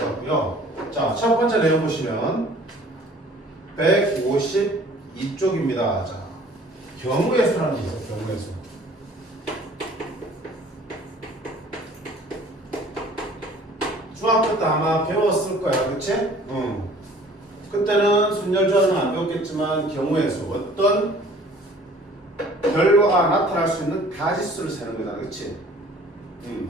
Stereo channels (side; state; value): both; normal; correlation 0.51